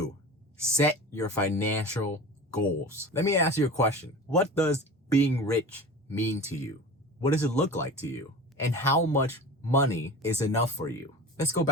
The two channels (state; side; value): normal; both; correlation 0.34